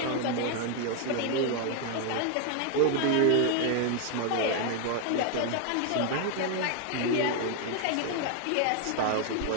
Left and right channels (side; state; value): both; different; correlation 0.00